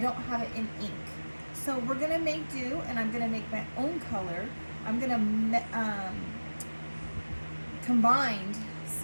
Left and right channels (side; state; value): both; inverted; correlation -1.00